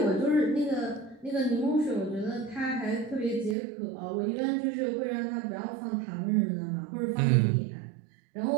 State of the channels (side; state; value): left; drops out; at 3.6 s